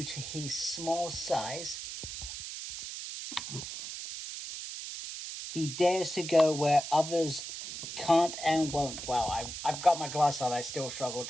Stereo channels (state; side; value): noise; right; hiss, 8 dB below the sound